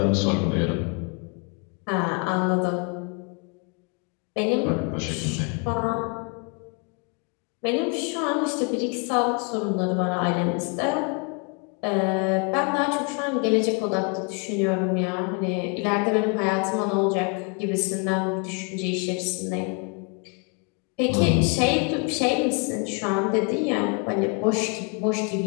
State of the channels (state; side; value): quieter; right; 34.5 dB